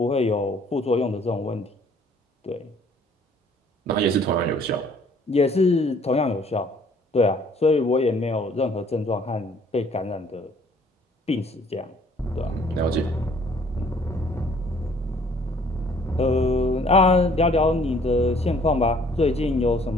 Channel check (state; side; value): normal; both; correlation 0.58